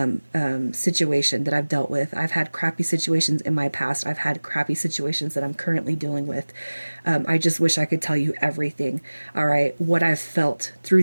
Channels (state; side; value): inverted; both; correlation -1.00